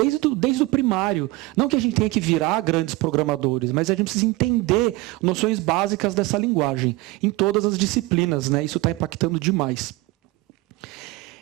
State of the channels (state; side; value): quieter; left; 21.0 dB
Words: o primário. Não que a gente tenha que virar grandes programadores, mas a gente precisa entender noções básicas dessa linguagem em todas as disciplinas, né? Isso está impactando demais.